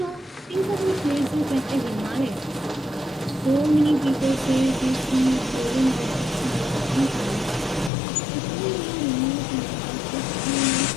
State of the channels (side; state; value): right; drops out; at 7.9 s